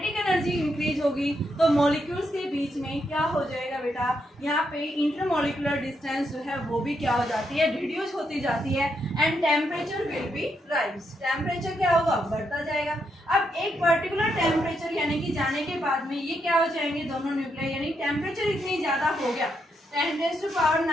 एनर्जी इंक्रीज होगी तो मॉलिक्यूल्स के बीच में क्या हो जाएगा बेटा, यहाँ पे इंटरमॉलिक्यूलर डिस्टेंस जो है वो भी क्या हो जाती है, रिड्यूस होती जाती है and temperature will be rise. Temperature क्या होगा, बढ़ता जाएगा। अब एक पर्टिकुलर टेम्परेचर यानी कि जाने के बाद में ये क्या हो जाएंगे दोनों न्यूक्लियाई, यानी टेम्परेचर इतनी ज्यादा हो गया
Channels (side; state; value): both; normal; correlation 0.80